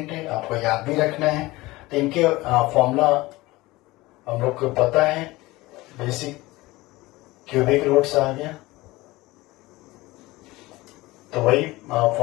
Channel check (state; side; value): quieter; right; 20.0 dB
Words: है, आपको याद भी रखना है। तो इनके फॉर्मूला हम लोग को पता है, बेसिक क्यूबिक रूट्स आ गया, तो वही